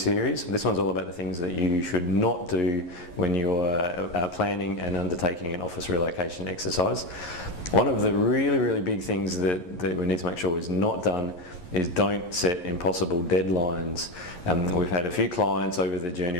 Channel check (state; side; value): late; right; 11 ms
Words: This one's all about the things that you should not do when you're planning and undertaking an office relocation exercise. One of the really big things that we need to make sure is not done is don't set impossible deadlines. We've had a few clients over the journey